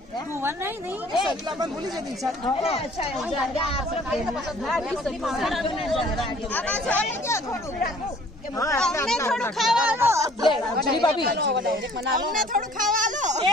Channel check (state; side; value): normal; both; correlation 0.54